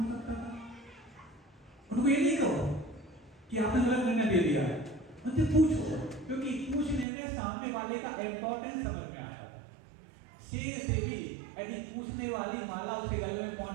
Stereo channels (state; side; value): drops out; left; at 7.1 s